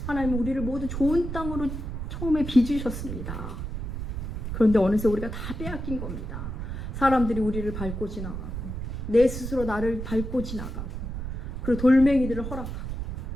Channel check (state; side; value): noise; right; rumble, 5 dB below the sound